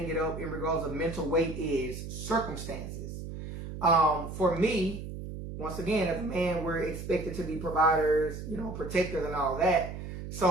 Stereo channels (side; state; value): right; noise; hum, 8 dB below the sound